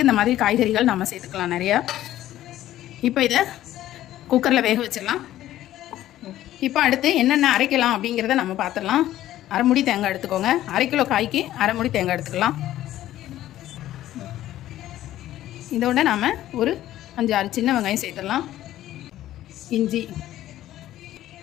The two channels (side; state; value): right; quieter; 13.6 dB